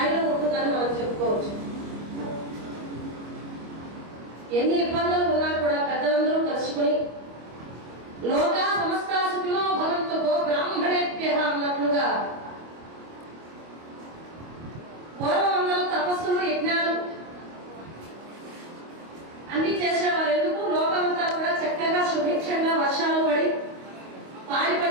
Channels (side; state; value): left; late; 25 ms